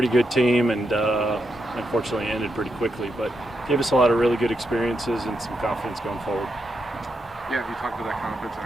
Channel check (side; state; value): both; normal; correlation 0.84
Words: good team, and unfortunately ended pretty quickly. But gave us a lot of really good experiences and some confidence going forward. Yeah, you talked about that confidence and